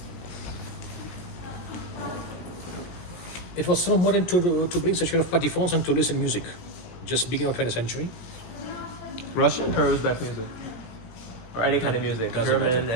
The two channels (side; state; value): right; late; 17 ms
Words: It was so modern to bring such kind of patifons and to listen music, just beginning of 20th century. Russian or Uzbek music? Or any kind of music? Doesn't German, matter.